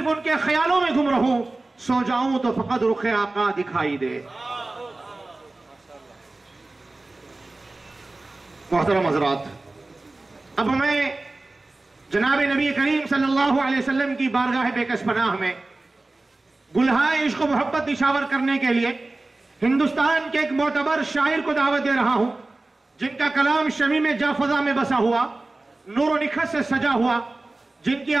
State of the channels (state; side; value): quieter; left; 3.1 dB